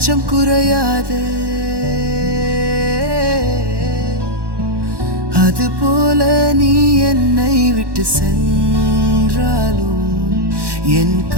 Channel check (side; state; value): left; late; 1.1 ms